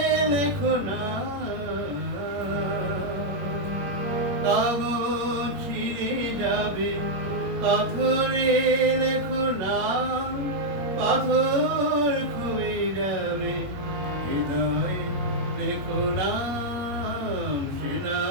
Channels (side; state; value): left; late; 21 ms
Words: লেখো না, কাগজ ছিঁড়ে যাবে। পাথরে লেখো নাম, পাথর ক্ষয়ে যাবে। হৃদয়ে লেখো নাম, সে